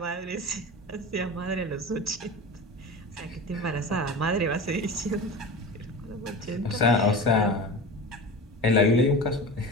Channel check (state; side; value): normal; both; correlation 0.31